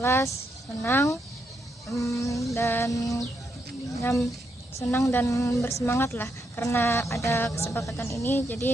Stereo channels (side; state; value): both; normal; correlation 0.79